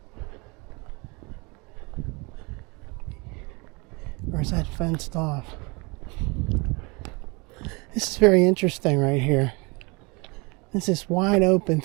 or is that fenced off? This is very interesting right here. It's this wide open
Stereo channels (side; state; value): left; quieter; 28.1 dB